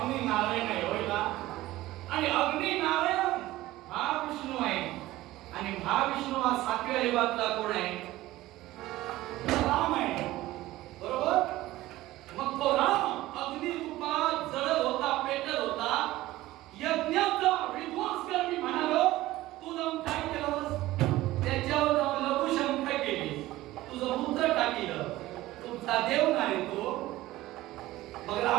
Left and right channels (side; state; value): left; quieter; 16.8 dB